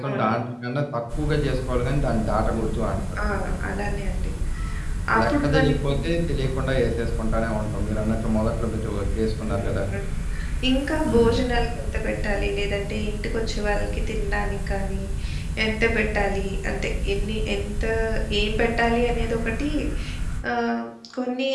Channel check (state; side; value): identical; both; correlation 1.00